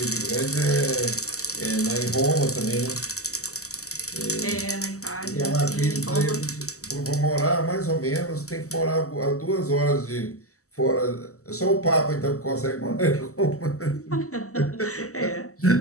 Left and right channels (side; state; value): right; late; 0.65 ms